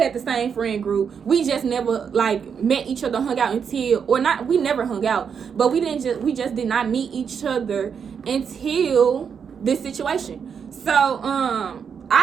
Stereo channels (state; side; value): quieter; left; 6.9 dB